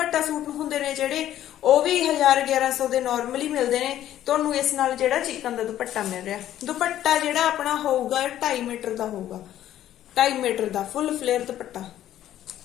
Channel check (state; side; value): quieter; right; 12.2 dB